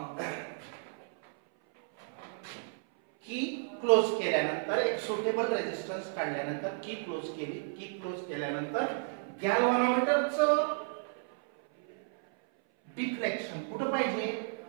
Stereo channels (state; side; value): silent; left; 56 dB below the other